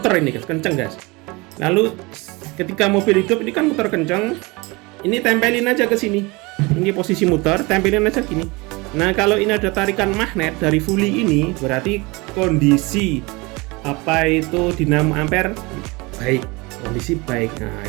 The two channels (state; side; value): quieter; left; 25.0 dB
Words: ini guys, kenceng guys. Lalu ketika mobil hidup ini kan muter kencang, ini tempelin aja ke sini. Ini posisi muter, tempelin aja gini. Nah, kalau ini ada tarikan magnet dari fully ini, berarti kondisi dinamo ampere baik, kondisi baik. Nah,